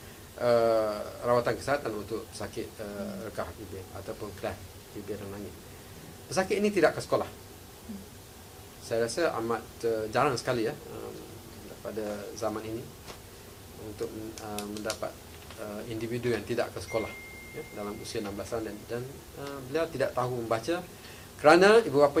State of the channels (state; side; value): identical; both; correlation 1.00